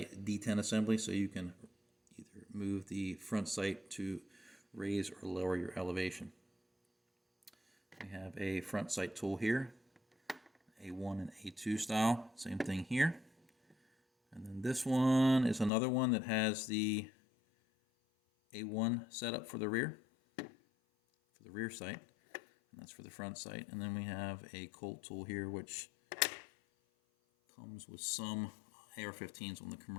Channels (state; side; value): drops out; right; at 15.7 s